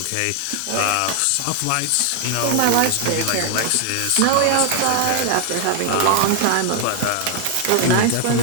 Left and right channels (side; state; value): both; different; correlation 0.00